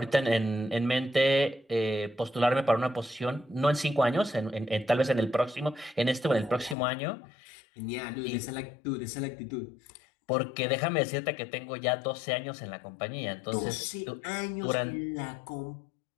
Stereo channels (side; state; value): right; drops out; at 6.8 s